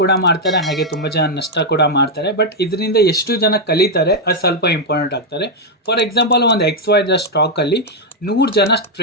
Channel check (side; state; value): both; normal; correlation 0.00